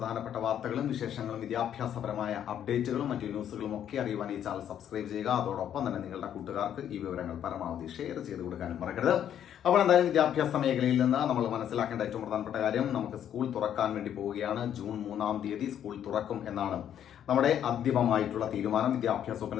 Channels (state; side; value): quieter; right; 9.9 dB